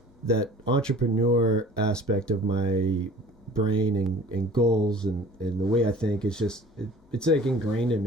that entrepreneur aspect of my brain and goals and the way I think is just it's like ingrained in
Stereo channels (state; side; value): normal; both; correlation 0.47